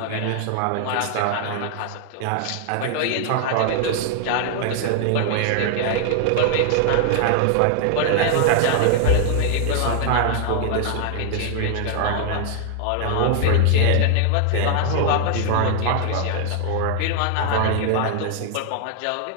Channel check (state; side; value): different; both; correlation 0.00